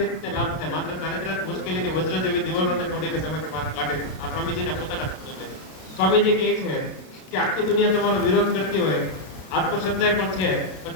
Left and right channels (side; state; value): right; late; 32 ms